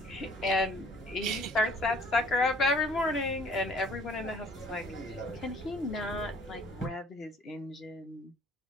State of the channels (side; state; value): both; normal; correlation 0.56